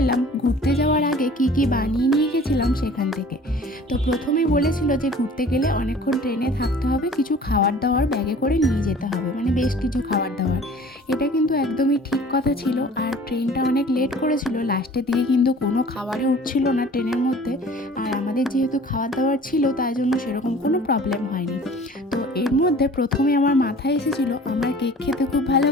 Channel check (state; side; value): normal; both; correlation 0.47